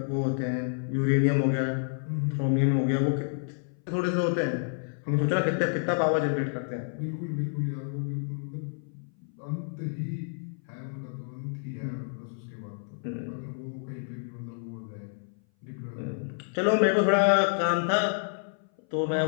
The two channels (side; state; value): right; silent; 57 dB below the other